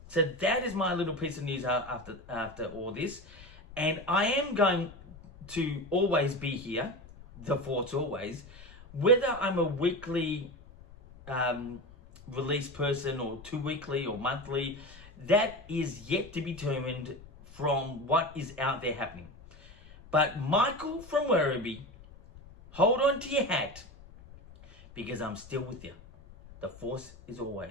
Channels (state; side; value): noise; left; rumble, 20 dB below the sound